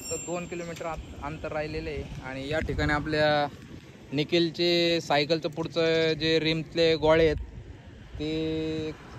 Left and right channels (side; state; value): both; identical; correlation 1.00